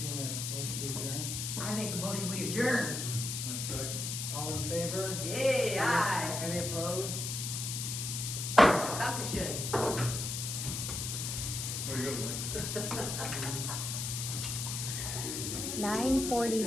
a motion to adjourn? I make a motion, we adjourn. A second. All in favor? Yay, aye. Any opposed? Dankeschön. Where you go, Mike?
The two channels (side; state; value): left; noise; hiss, 3 dB below the sound